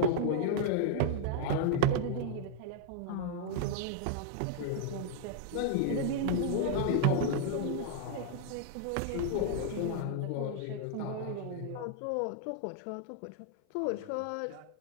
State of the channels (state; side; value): different; both; correlation 0.00